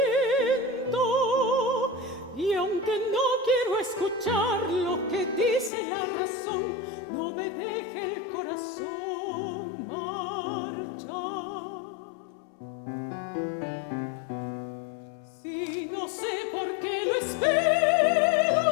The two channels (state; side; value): drops out; right; at 5.7 s